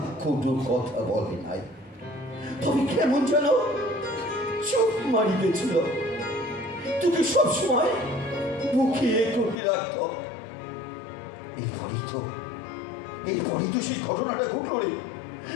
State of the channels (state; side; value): drops out; right; at 9.6 s